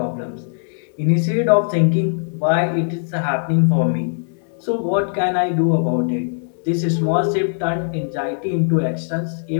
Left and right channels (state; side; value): silent; right; 66 dB below the other